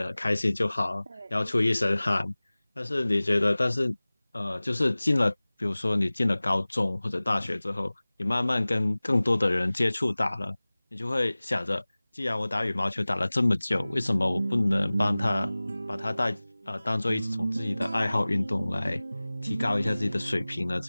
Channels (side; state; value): both; inverted; correlation -0.99